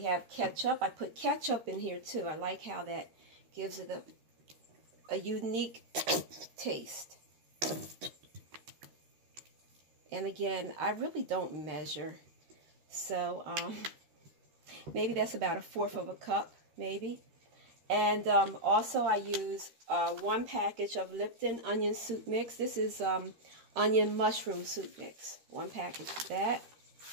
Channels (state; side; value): late; left; 13 ms